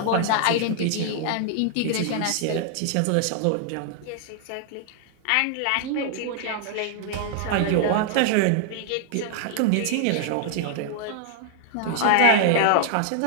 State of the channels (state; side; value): different; both; correlation 0.00